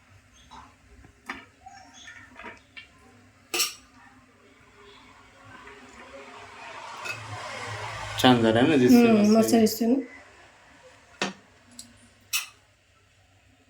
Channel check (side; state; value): both; identical; correlation 1.00